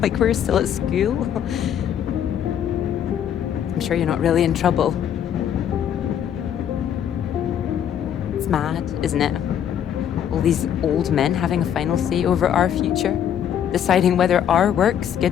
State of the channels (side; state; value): right; quieter; 9.4 dB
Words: Like we're still at school. I'm sure you're not really in trouble. It's mad, isn't it? All these old men having a final say over our future, deciding whether our work's